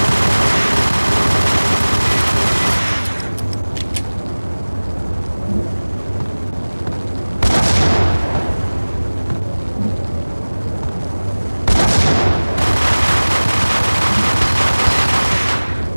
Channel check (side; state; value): both; inverted; correlation -1.00